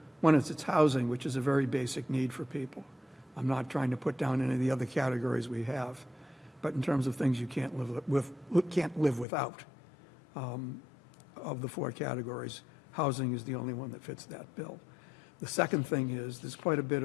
One is its housing, which is a very basic need for people. I'm not trying to put down any of the other categories we have, but in terms of things you can't live without, of the four categories, housing is the only one that fits that bill. The second thing is, there's quite a bit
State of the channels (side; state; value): right; drops out; at 9.2 s